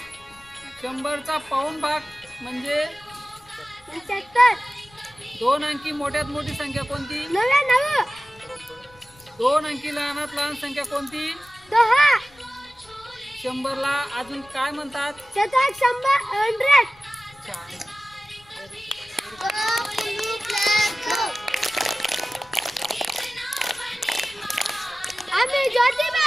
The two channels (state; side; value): noise; left; rumble, 27 dB below the sound